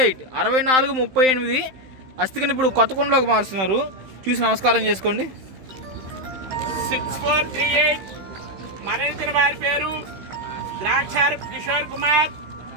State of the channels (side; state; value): left; late; 15 ms